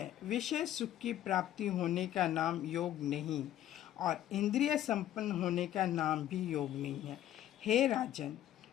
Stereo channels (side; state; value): right; quieter; 12.2 dB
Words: विषय सुख की प्राप्ति होने का नाम योग नहीं, और इंद्रिय संपन्न होने का नाम भी योग नहीं है। हे राजन,